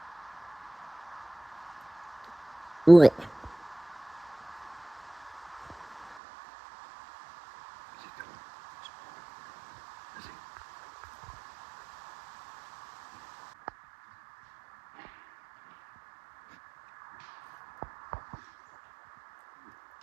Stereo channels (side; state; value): left; drops out; at 6.2 s